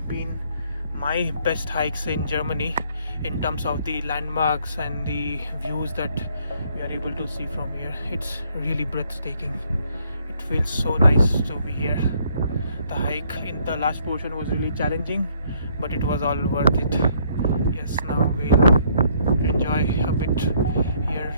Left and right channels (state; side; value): inverted; both; correlation -0.66